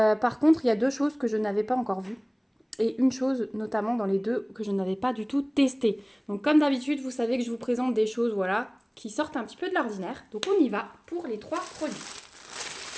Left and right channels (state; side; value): identical; both; correlation 1.00